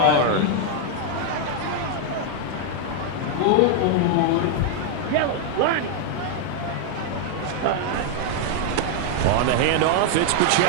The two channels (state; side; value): different; both; correlation 0.00